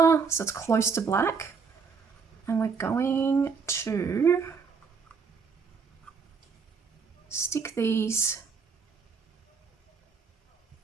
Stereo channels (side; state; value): left; quieter; 5.5 dB